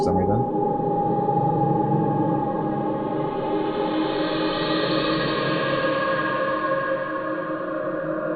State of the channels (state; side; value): identical; both; correlation 1.00